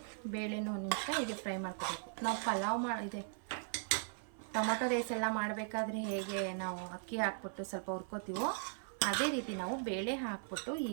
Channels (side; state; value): left; silent; 52 dB below the other